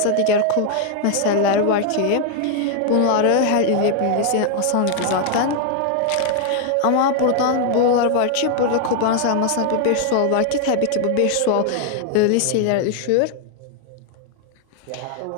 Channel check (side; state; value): both; different; correlation 0.00